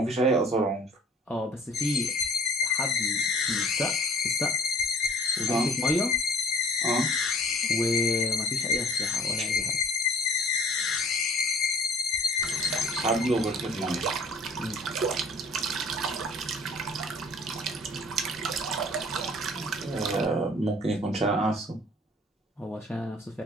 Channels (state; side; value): normal; both; correlation 0.51